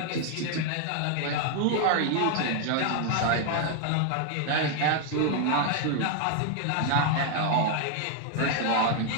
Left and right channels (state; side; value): different; both; correlation 0.00